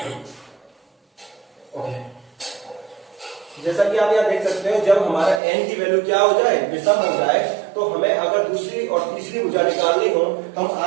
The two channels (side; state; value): left; drops out; at 5.4 s